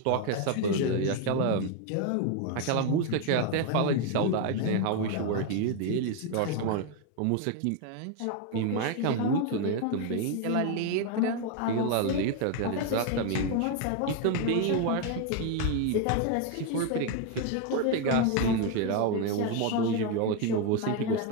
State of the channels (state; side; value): different; both; correlation 0.01